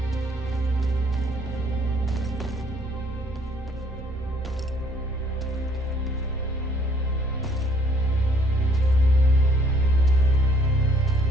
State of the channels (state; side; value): normal; both; correlation 0.62